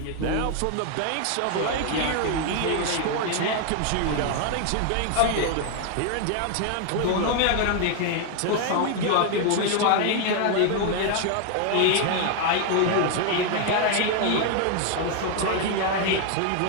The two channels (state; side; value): different; both; correlation 0.00